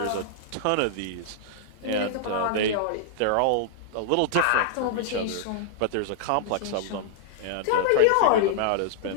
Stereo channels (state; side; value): different; both; correlation -0.01